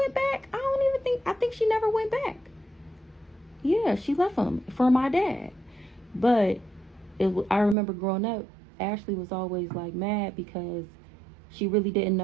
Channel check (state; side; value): drops out; left; at 7.8 s